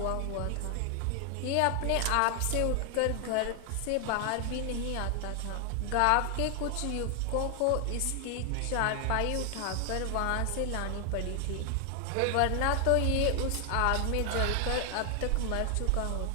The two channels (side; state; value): both; different; correlation 0.00